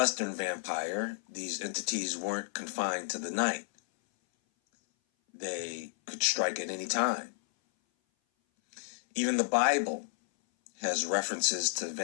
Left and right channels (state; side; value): silent; right; 56 dB below the other